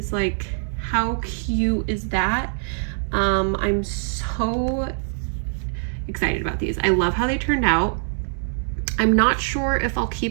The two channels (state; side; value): silent; left; digital silence